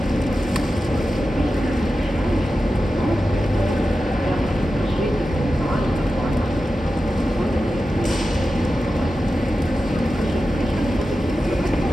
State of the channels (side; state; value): both; normal; correlation 0.92